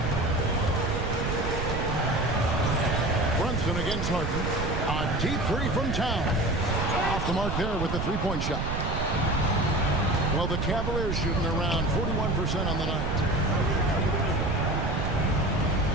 Brunson against Harden. A deep three from Town. Off the mark there with the three-point shot. Well, the Cavaliers shooting around 41% on the night.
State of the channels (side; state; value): right; noise; rumble, 2 dB below the sound